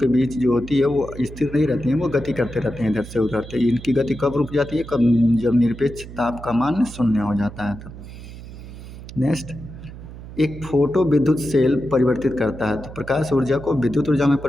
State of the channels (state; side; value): noise; right; hum, 14 dB below the sound